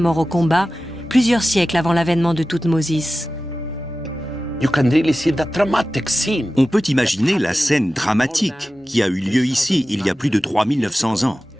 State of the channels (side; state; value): both; normal; correlation 0.95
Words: au combat plusieurs siècles avant l'avènement de Thoutmôsis. On peut imaginer la scène dramatique qui a eu lieu ici il y a plus de 3900 ans.